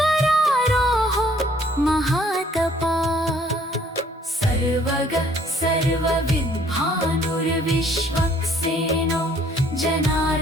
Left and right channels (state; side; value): normal; both; correlation 0.61